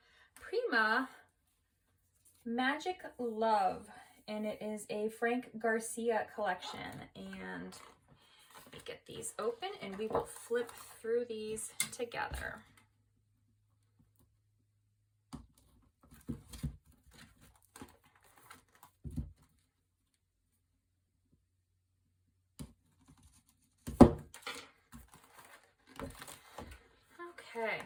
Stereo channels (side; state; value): both; identical; correlation 1.00